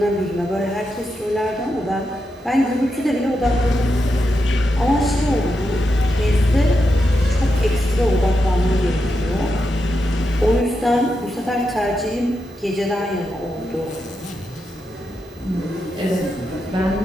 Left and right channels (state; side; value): normal; both; correlation 0.86